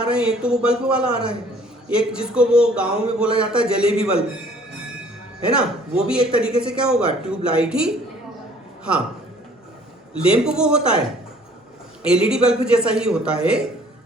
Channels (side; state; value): both; normal; correlation 0.56